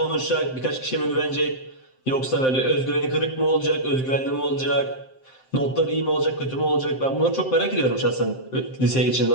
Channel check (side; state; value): right; late; 7.7 ms